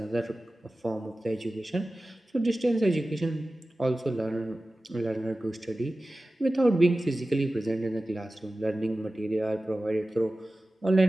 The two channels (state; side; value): normal; both; correlation 0.96